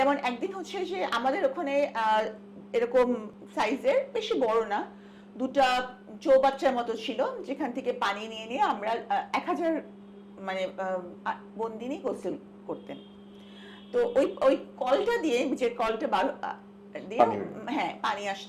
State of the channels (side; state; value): both; identical; correlation 1.00